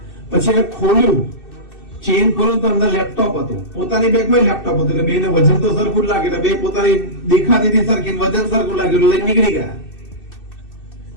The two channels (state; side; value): late; right; 2.6 ms